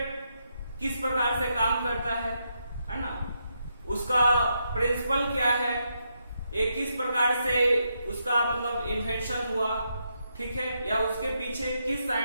किस प्रकार से काम करता है ना, उसका प्रिंसिपल क्या है, एक किस प्रकार से उसका मतलब इन्वेंशन हुआ, ठीक है, या उसके पीछे किस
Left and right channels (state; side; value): inverted; both; correlation -0.81